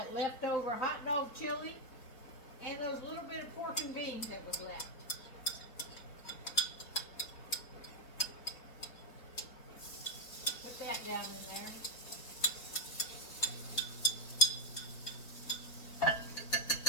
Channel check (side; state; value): right; late; 4.2 ms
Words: leftover hot dog chili and those little bit of pork and beans that was left. Put that down in there.